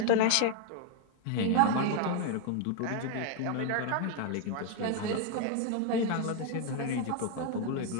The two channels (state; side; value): different; both; correlation 0.01